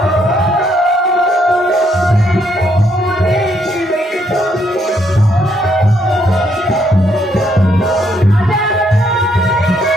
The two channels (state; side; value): normal; both; correlation 0.72